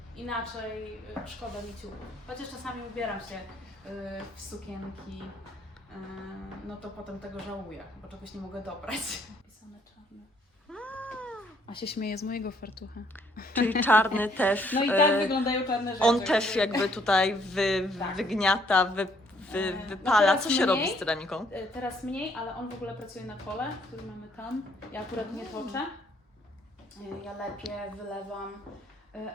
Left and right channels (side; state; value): both; normal; correlation 0.66